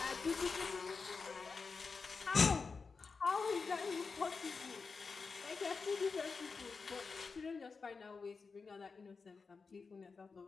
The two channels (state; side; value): quieter; right; 4.8 dB